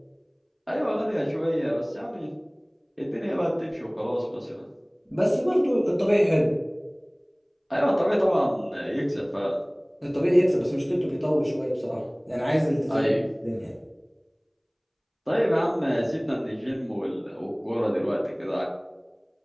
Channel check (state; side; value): identical; both; correlation 1.00